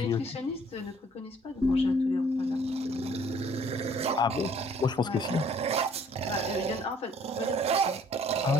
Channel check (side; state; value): both; normal; correlation 0.59